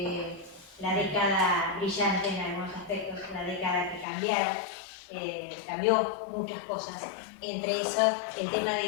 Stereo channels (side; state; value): right; drops out; at 4.0 s